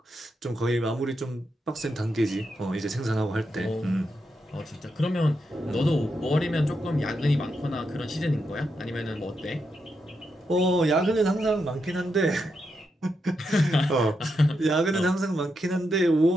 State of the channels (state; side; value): normal; both; correlation 0.84